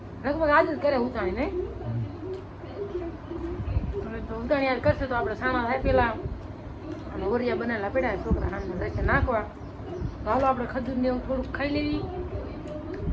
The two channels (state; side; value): identical; both; correlation 1.00